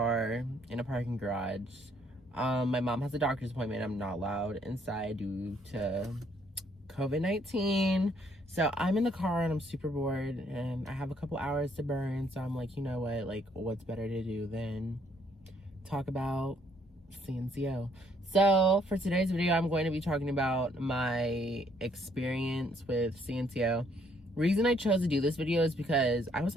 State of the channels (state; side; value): normal; both; correlation 0.67